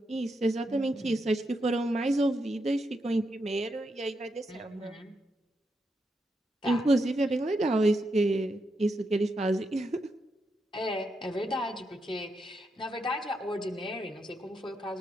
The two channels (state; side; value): normal; both; correlation 0.83